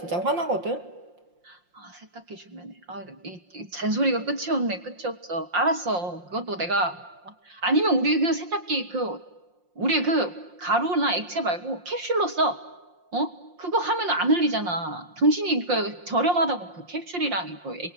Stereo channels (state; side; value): late; left; 5.7 ms